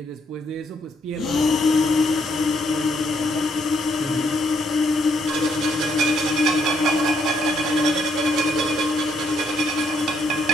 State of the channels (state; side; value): normal; both; correlation 0.72